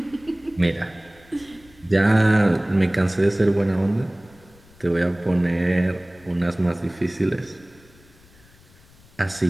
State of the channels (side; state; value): left; noise; rumble, 27 dB below the sound